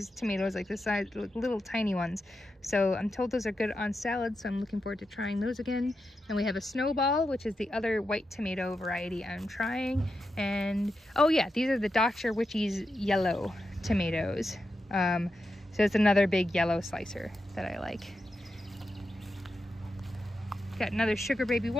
tomatoes like this size, little tiny ones. So I'm told those are good on salad, so I'm looking forward to trying those again. And we have a snowball, which is the other white tomato variety I'm trying. And oh yeah, these are the Dr. Witchy's yellow tomatoes. So it's another big yellow slicer that I like. Got another sugar baby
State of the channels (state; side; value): normal; both; correlation 0.88